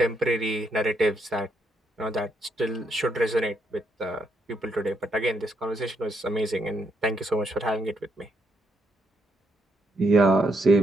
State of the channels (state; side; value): normal; both; correlation 0.76